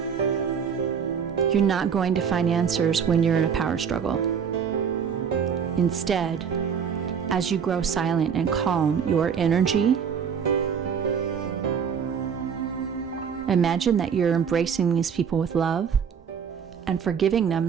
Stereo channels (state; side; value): quieter; left; 7.0 dB